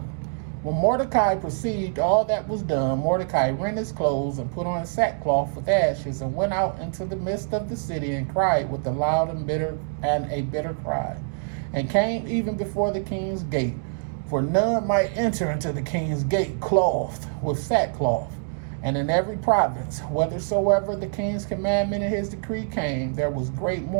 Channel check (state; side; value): silent; left; digital silence